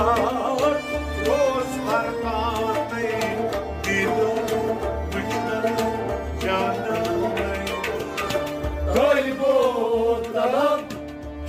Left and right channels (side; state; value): both; identical; correlation 1.00